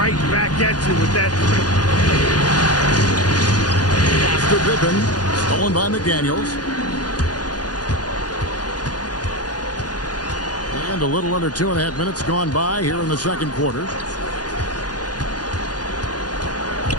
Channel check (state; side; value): late; right; 0.69 ms